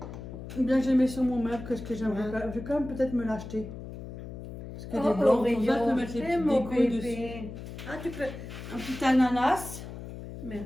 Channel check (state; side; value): noise; left; hum, 11 dB below the sound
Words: Ou bien j'ai mis sur mon meuble, que ce que j'aimerais. Ouais. Je vais quand même peut-être me l'acheter. Parce que Oh, des blancs, Oreo, comme ça, je peux mettre les c'est petites mon décos bébé. dessus. Ah, tu peux. Un petit ananas.